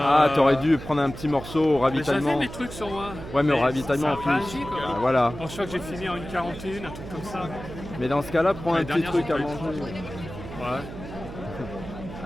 t'aurais dû prendre un petit morceau au ravitaillement. J'avais mes trucs sur moi. Ouais, mais au ravitaillement en ça plus. a réagi, quoi. Ah, voilà. Je crois que j'ai fini en 1h41, un truc comme ça. Mais dans ce cas-là, prends un L'année petit dernière, truc j'ai à pas eu manger. Ouais.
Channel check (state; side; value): noise; right; hum, 12 dB below the sound